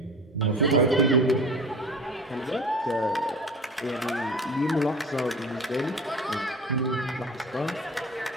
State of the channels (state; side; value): normal; both; correlation 0.38